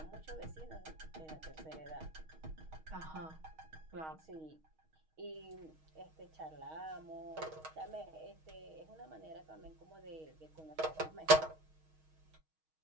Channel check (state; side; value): late; left; 6.4 ms